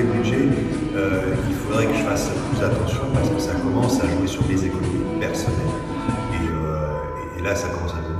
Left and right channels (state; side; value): identical; both; correlation 1.00